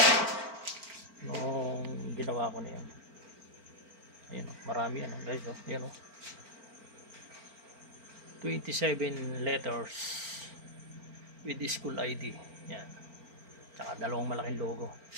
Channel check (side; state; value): left; late; 4.4 ms